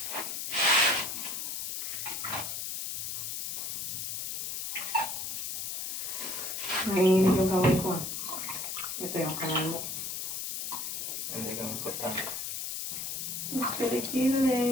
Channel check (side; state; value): left; noise; hiss, 4 dB below the sound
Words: Nanginginig yung kamay ko. Ito yung kamay mo. Hindi kang importante.